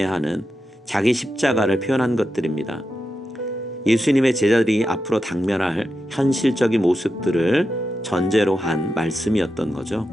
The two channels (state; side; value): normal; both; correlation 0.88